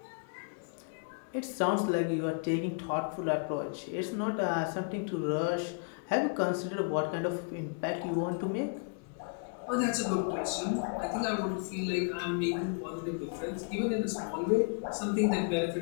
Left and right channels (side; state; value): right; quieter; 38.2 dB